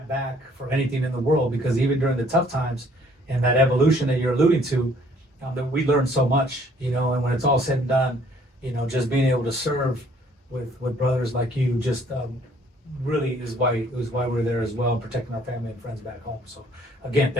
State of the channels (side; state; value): both; normal; correlation 0.60